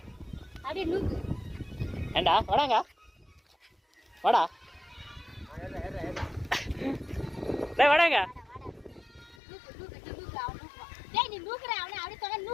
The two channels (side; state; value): right; drops out; at 9.3 s